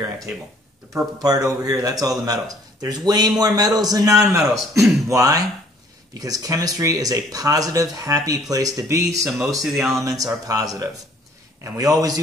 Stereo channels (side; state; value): both; normal; correlation 0.59